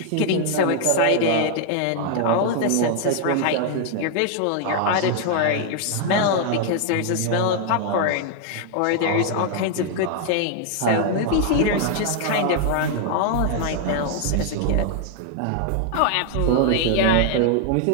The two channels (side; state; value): both; different; correlation 0.00